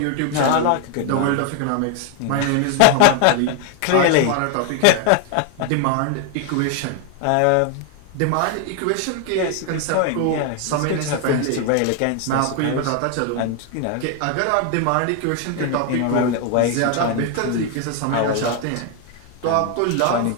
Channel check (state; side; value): different; both; correlation 0.01